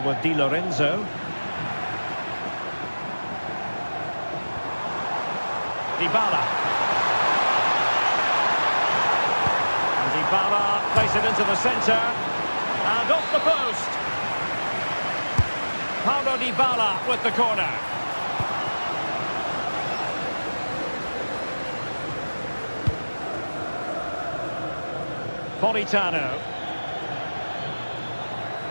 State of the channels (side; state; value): both; inverted; correlation -1.00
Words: with Di Lorenzo. Dybala. And Dybala places it into the centre. And off the post. Paulo Dybala with the corner. Napolitano.